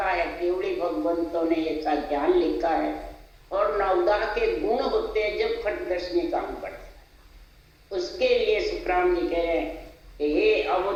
है। केवली भगवंतों ने ऐसा ज्ञान लिखा है। और नवदा के गुण होते हैं जब खट दर्शनी का अंग बढ़ता है। उसके लिए सुखराम जी कह रहे हैं कि हे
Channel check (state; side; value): identical; both; correlation 1.00